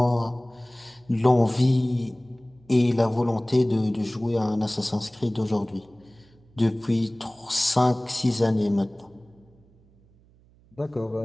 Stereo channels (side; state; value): right; noise; hum, 30 dB below the sound